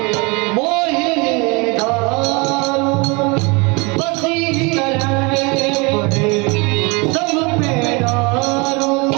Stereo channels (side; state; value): left; quieter; 28.3 dB